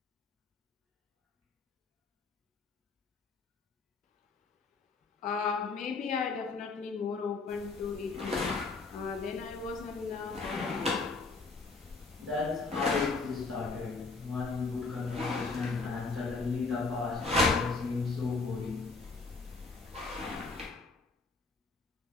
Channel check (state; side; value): quieter; right; 3.9 dB